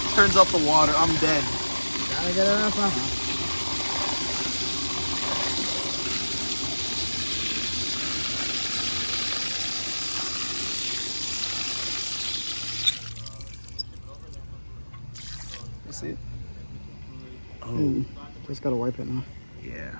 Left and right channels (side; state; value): both; inverted; correlation -1.00